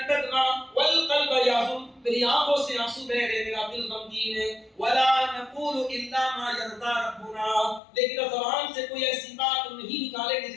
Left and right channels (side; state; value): right; drops out; at 7.8 s